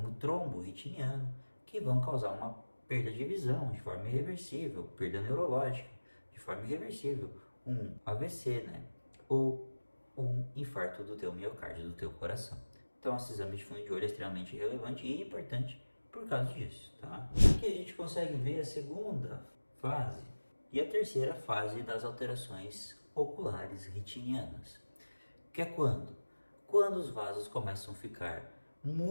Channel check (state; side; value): inverted; both; correlation -1.00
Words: trombo retiniano, que vão causar uma perda de visão de forma irreversível, perda neurológica de forma irreversível, um AVC, né? Ou um infarto do teu miocárdio, do teu coração. Então esse exame de fundo de olho é extremamente relevante e importante por causa disso, tá? Aqui a gente consegue ver a segunda fase e a terceira fase das alterações oculares retinianas, que é quando? Quando os vasos começam a ficar